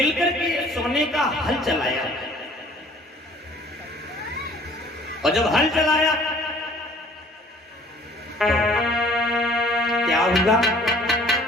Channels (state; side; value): normal; both; correlation 0.53